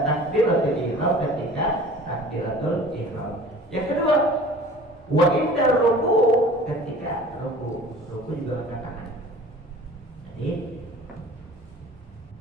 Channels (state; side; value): normal; both; correlation 0.44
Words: takbiratul ihram, ketika takbiratul ihram. Yang kedua, wa inda ruku, ketika ruku juga angkat tangan. Jadi